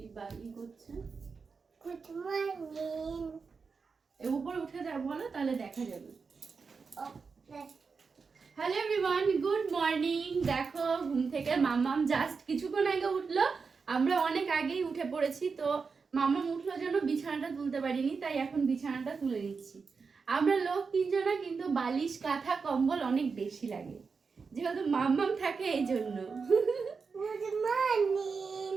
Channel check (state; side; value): quieter; left; 5.1 dB